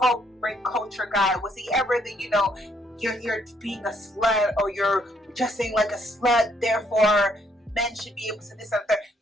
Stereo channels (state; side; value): normal; both; correlation 0.70